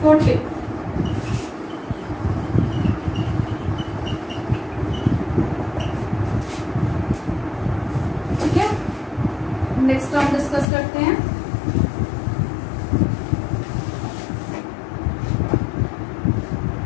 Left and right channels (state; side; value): drops out; right; at 10.7 s